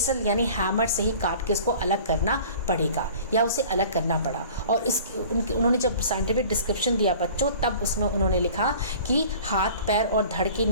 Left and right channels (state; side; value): inverted; both; correlation -0.45